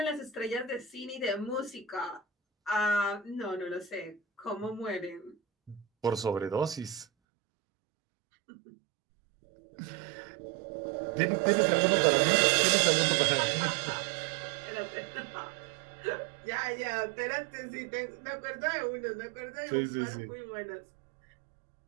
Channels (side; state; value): left; drops out; at 7.1 s